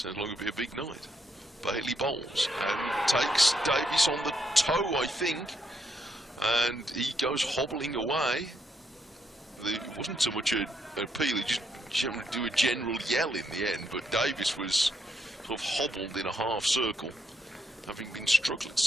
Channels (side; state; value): both; normal; correlation 0.77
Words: like it'll be a big night. Bailey bowls and takes Davis on the toe, I think. And he goes hobbling away. It wasn't so much an appeal, he just do a general yell in the end, but Davis was sort of hobbled in a half circle, having been struck. Let's